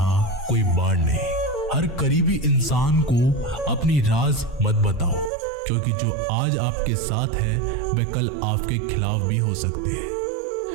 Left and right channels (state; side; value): drops out; left; at 5.3 s